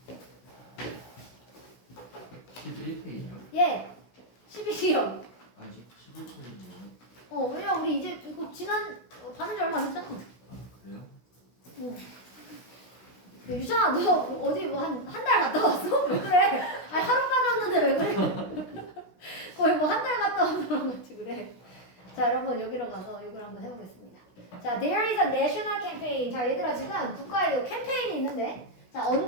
11페이지요? 예, 12시요. 아직 11페이지요? 왜냐, 우리 이제 이거 받은 지 얼마 안 됐잖아. 아, 그래요? 유찬아, 너 어디 뭐 한 달 갔다 왔어? 왜 그래? 아니, 하루 빠졌는데 왜 그래? 거의 뭐 한 달 갔다 온 사람 같이 그래. 자, 여러분, 여기로 가서 이걸 한번 해보겠습니다. 자, there is a national campaign. 자, 얘들아, 지금 국가에 이 캠페인이 있는데, 자,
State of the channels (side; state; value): right; late; 16 ms